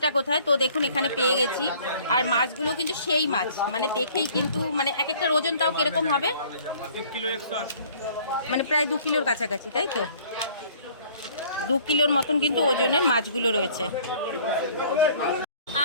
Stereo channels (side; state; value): both; inverted; correlation -0.55